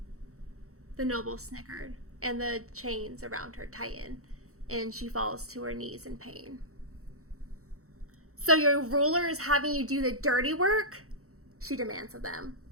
The noble snickered, and the chains around her tighten, and she falls to her knees in pain. So your ruler is having you do the dirty work? She demands of them.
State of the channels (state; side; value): late; left; 0.64 ms